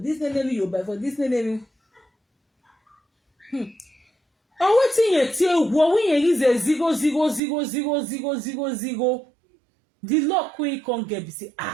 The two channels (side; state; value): left; drops out; at 7.4 s